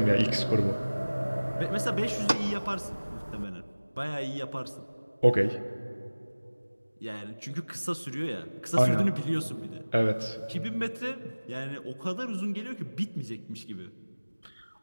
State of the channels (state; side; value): inverted; both; correlation -1.00